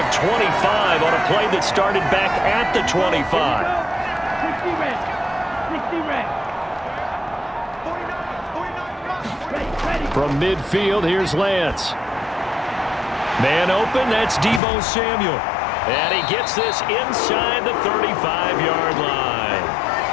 of 25 on a play that started back at the 25. From midfield, here's Lance. Man open, that's Deebo Samuel. And he gets this inside the 35-yard line.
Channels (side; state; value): right; drops out; at 14.6 s